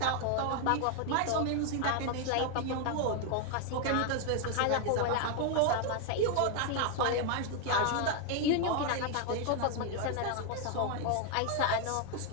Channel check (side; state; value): both; different; correlation 0.00